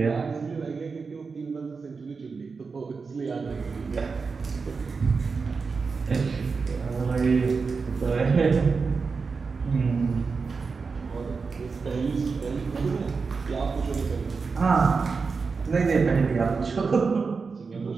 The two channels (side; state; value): left; quieter; 4.8 dB